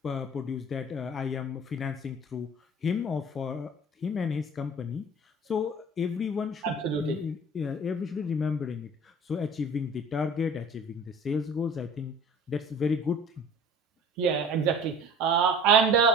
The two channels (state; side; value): normal; both; correlation 0.43